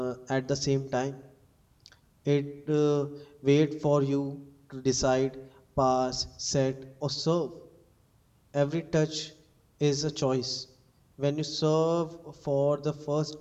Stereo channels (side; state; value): both; identical; correlation 1.00